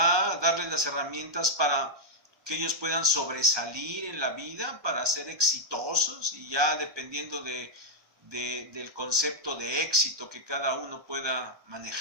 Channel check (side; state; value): left; late; 1.2 ms